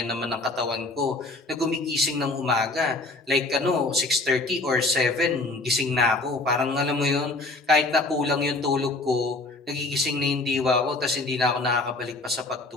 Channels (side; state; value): right; quieter; 3.0 dB